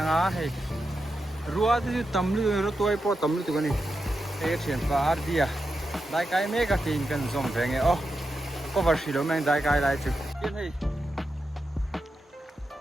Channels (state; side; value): normal; both; correlation 0.88